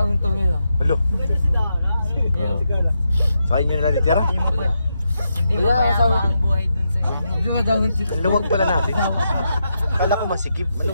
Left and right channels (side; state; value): both; inverted; correlation -0.84